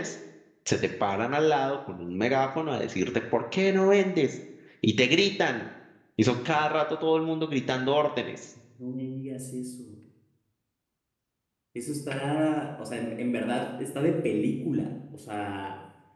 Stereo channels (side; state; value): both; identical; correlation 1.00